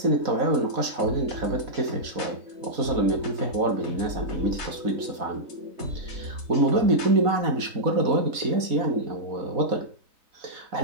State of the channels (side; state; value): left; late; 4.1 ms